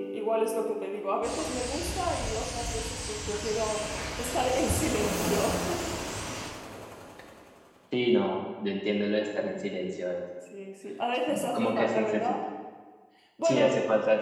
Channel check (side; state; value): both; identical; correlation 1.00